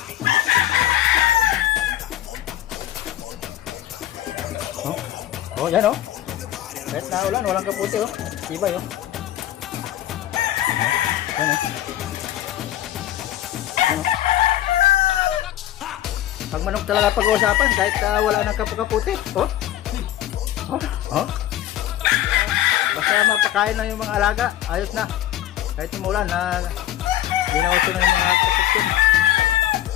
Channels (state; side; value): quieter; right; 13.1 dB